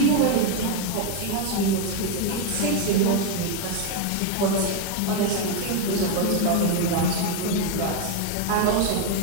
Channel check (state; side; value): different; both; correlation 0.01